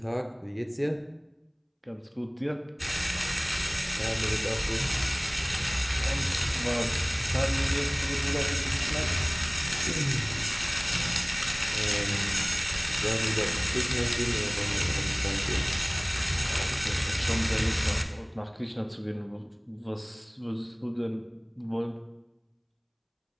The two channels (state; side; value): identical; both; correlation 1.00